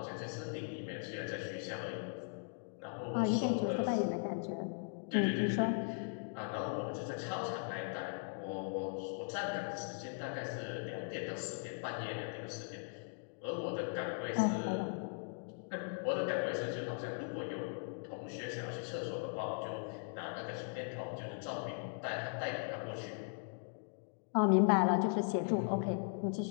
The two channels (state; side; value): silent; right; 52 dB below the other